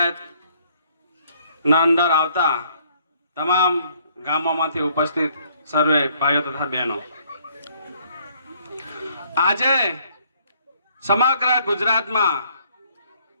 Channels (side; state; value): both; inverted; correlation -0.65